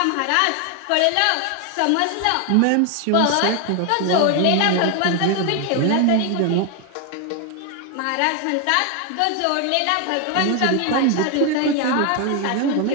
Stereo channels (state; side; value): different; both; correlation 0.01